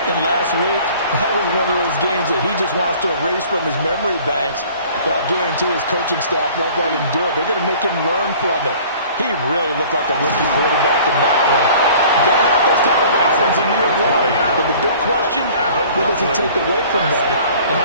And last week, that was one of those games that he just wants to erase from his memory banks. But I guarantee his coaching staff won't let him do it. They're going to make him learn from it. He really looked like a rookie quarterback in that one. Going to have those kind of lessons in year one. But the big question, what does he take away from them, and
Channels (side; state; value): both; inverted; correlation -0.49